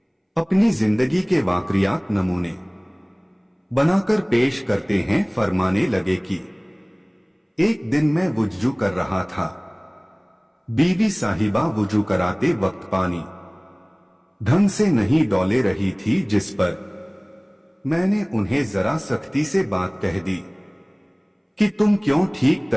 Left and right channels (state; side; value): identical; both; correlation 1.00